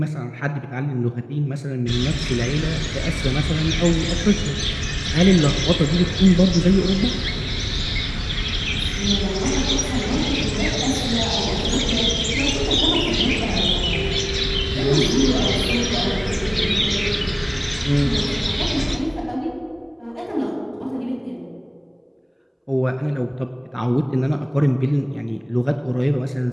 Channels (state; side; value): identical; both; correlation 1.00